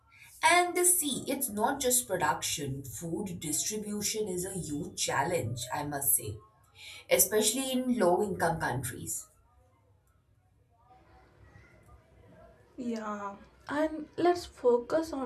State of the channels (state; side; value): identical; both; correlation 1.00